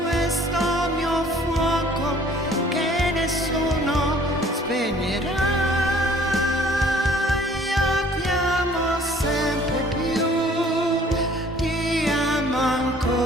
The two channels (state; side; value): normal; both; correlation 0.55